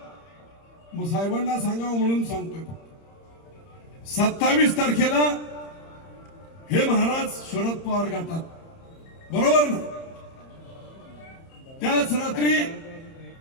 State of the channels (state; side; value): late; right; 30 ms